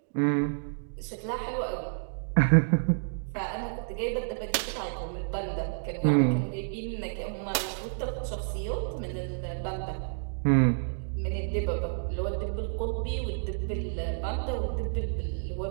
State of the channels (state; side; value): silent; left; digital silence